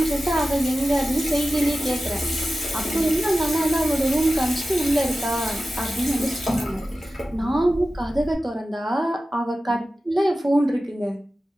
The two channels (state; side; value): normal; both; correlation 0.95